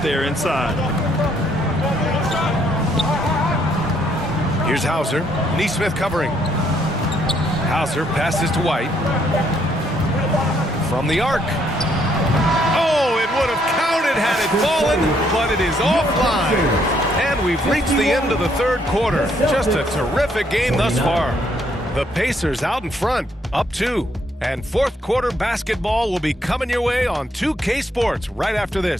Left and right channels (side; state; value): both; normal; correlation 0.70